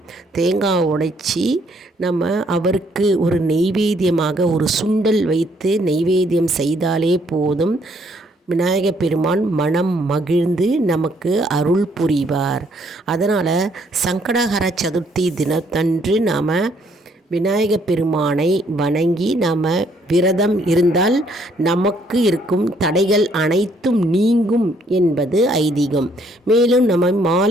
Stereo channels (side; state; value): both; normal; correlation 0.67